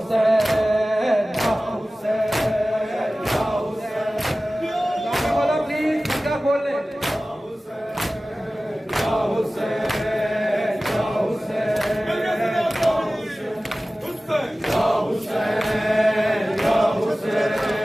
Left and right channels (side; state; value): both; normal; correlation 0.97